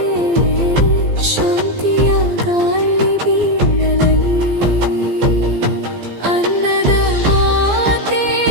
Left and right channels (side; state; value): left; late; 15 ms